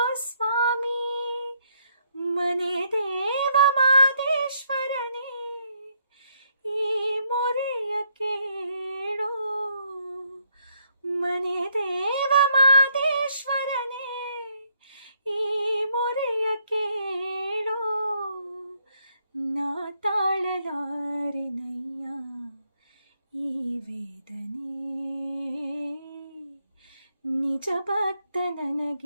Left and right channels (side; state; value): both; inverted; correlation -0.72